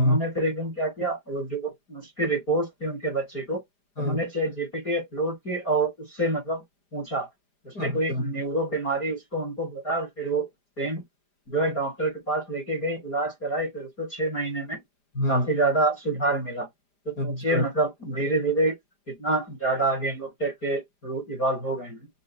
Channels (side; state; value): right; late; 5.0 ms